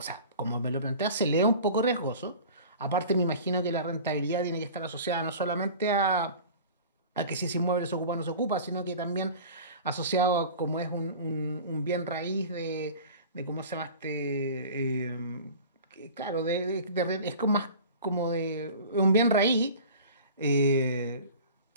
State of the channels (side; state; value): both; inverted; correlation -0.40